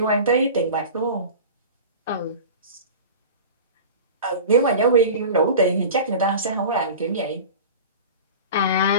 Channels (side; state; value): both; inverted; correlation -0.34